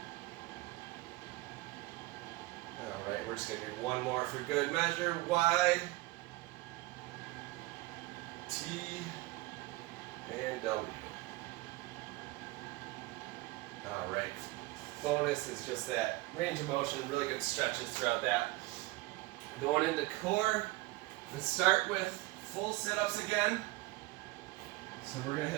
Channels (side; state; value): left; quieter; 20.8 dB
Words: Alright, we're just going to do one more for good measure. Y, T, and W. Alright. Bonus is just that range of motion, really good stretches throughout that. Going into core, let's start with full sit-ups again. So we're going to